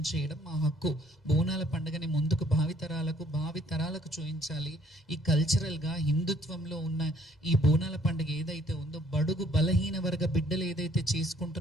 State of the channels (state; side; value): normal; both; correlation 0.62